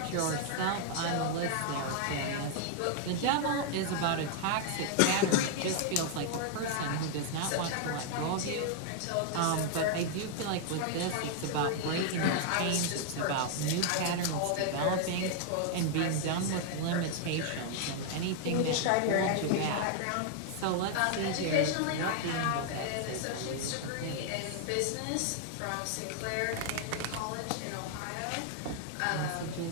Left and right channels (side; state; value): both; different; correlation 0.00